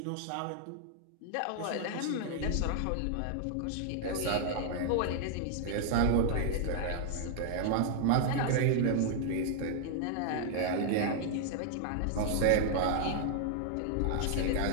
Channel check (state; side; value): different; both; correlation 0.00